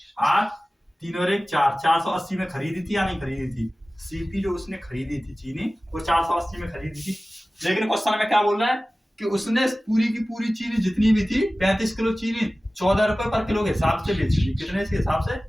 8 3 और 1 4 480 में खरीदी थी या नहीं खरीदी थी। सीपी जो उसने खरीदी थी चीनी वो 480 में खरीदी थी। लेकिन क्वेश्चन में क्या बोल रहा है कि उसने पूरी की पूरी चीनी जितनी भी थी 35 किलो चीनी 14 रुपए पर किलो के हिसाब से बेच दी। कितने के हिसाब से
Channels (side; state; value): both; normal; correlation 0.97